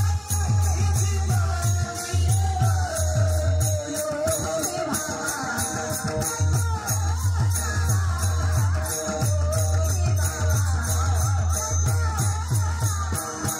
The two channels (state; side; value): identical; both; correlation 1.00